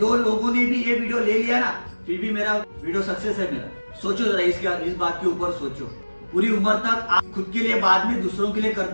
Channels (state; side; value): inverted; both; correlation -1.00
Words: लोगों ने भी ये वीडियो ले लिया ना, फिर भी मेरा वीडियो सक्सेस है मेरा। सोचो जरा इस बात के ऊपर सोचो। पूरी उम्र तक आप खुद के लिए, बाद में दूसरों के लिए